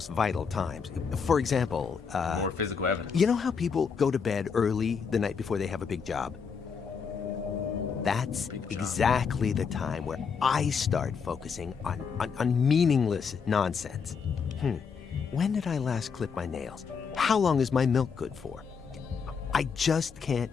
vital times. For example, More physical evidence. you know how people go to bed early the night before they have a big job? That's exactly the time where I start focusing on meaningless nonsense. When did I last clip my nails? How long is my milk good for? I just can't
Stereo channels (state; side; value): quieter; right; 6.0 dB